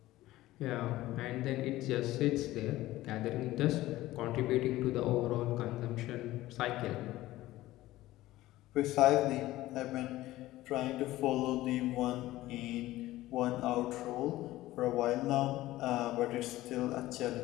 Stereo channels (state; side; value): quieter; right; 16.5 dB